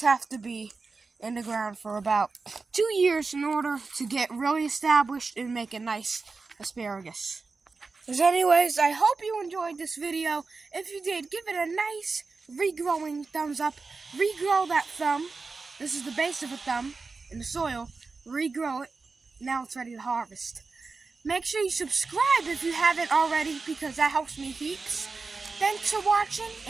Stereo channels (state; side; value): quieter; left; 4.2 dB